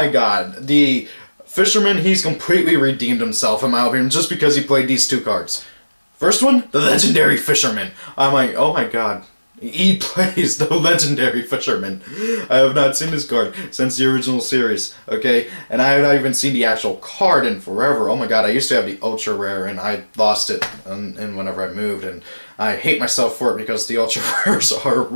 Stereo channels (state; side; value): inverted; both; correlation -1.00